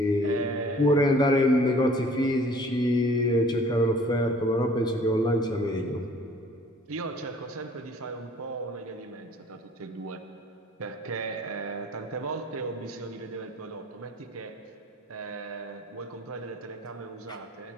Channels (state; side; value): normal; both; correlation 0.53